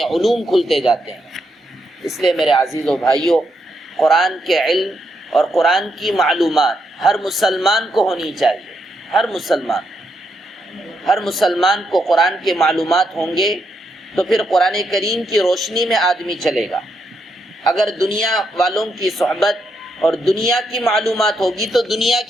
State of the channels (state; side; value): normal; both; correlation 0.80